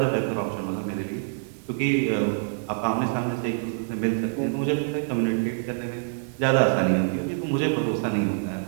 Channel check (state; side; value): silent; left; digital silence